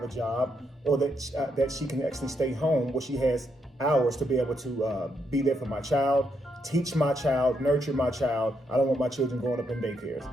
a job, or that she can actually stay home where she has hours to be able to be there for my child, teach my child, nurture my child. I don't want my children growing up in daycares.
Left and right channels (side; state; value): both; normal; correlation 0.78